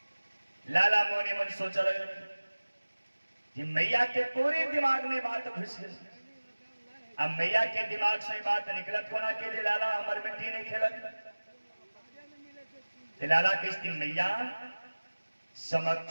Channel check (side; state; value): both; inverted; correlation -1.00